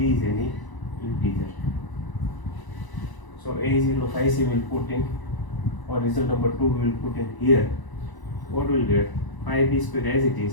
is any integer. So a is equal to 5c will put in, or result number 2 we will put in here. What will get? 5b square as it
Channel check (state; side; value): late; right; 1.0 ms